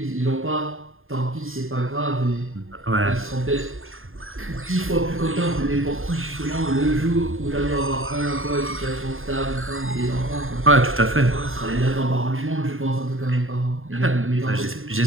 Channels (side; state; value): left; late; 0.60 ms